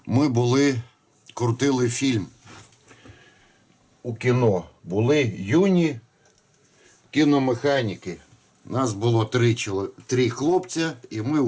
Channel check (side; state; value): both; identical; correlation 1.00